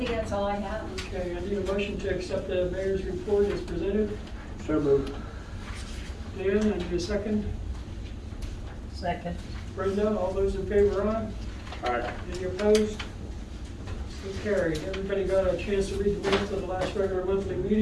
that's all I have. Okay, I need a motion to accept the mayor's report as presented. So moved. Dan, I need a second. Second. Brenda, all those in favor, aye? Aye. Any opposed? So carried. Everybody got a chance to read the minutes of the last regular monthly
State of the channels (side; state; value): both; identical; correlation 1.00